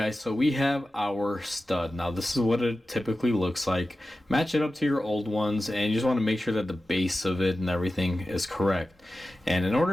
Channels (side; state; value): both; normal; correlation 0.93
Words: so we have our stud. Now this is what it typically looks like. Match it up to your old ones, and you just want to make sure that the base of it and everything is correct. And in